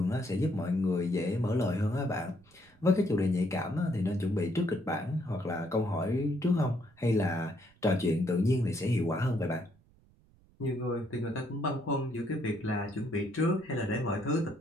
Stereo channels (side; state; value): right; noise; rumble, 30 dB below the sound